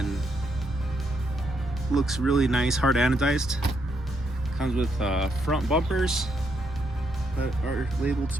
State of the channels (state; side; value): normal; both; correlation 0.77